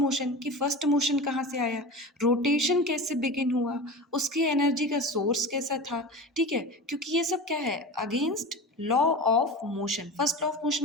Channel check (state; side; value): normal; both; correlation 0.30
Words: कि फर्स्ट मोशन कहाँ से आया, रोटेशन कैसे बिगिन हुआ, उसकी एनर्जी का सोर्स कैसा था, ठीक है। क्योंकि ये सब क्या है, against law of motion. First law of